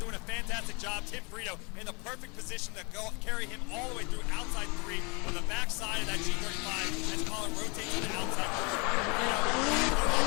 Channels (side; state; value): right; quieter; 31.0 dB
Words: a fantastic job. Tim Frito in the perfect position to carry him all the way through outside 3 on the back side of that G35 as Colin rotates to the outside